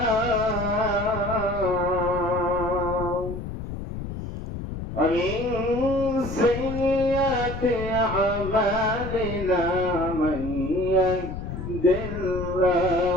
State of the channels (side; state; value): left; noise; rumble, 7 dB below the sound